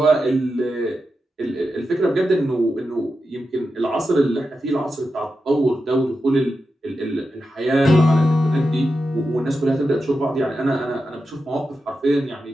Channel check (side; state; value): both; normal; correlation 0.89